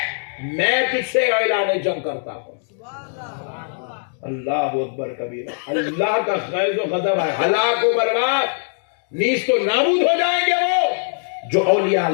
میں تجھ سے اعلان جنگ کرتا ہوں۔ اللہ اکبر کبیرہ، اللہ کا غیظ و غضب ہے، ہلاک و برباد، نیست و نابود ہو جائیں گے وہ جو اولیاء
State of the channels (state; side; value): silent; right; digital silence